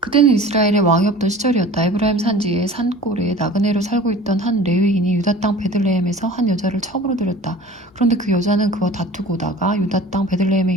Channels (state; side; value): normal; both; correlation 0.42